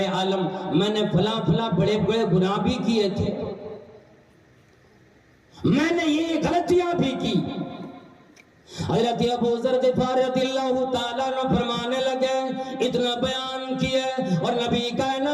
عالم میں نے فلاں فلاں بڑے بڑے گناہ بھی کیے تھے، میں نے یہ غلط غلطیاں بھی کی۔ حضرت ابو ذر غفاری رضی اللہ تعالیٰ عنہ فرمانے لگے، اتنا بیان کیا اور نبی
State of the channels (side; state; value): both; identical; correlation 1.00